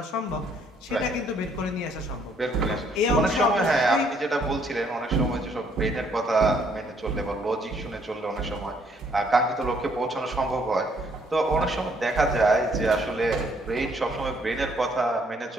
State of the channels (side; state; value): both; normal; correlation 0.66